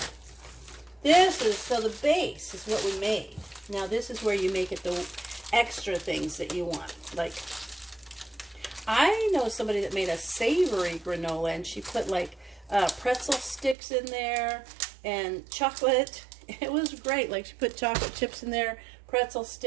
This is, so the base is what we made. Now this is where you make it the extra things that you want. Like, I know somebody that made a savory granola, and she put like pretzel sticks in there and chocolate. It was great. Like, she put chocolate chips in there, pretzel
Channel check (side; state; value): left; drops out; at 13.8 s